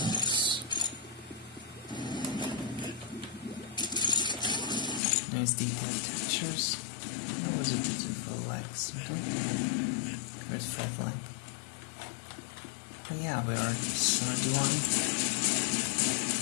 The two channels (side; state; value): right; drops out; at 5.0 s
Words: Nice detailed textures. That was a beautiful like something. Where's fault line? But yeah, we are 71.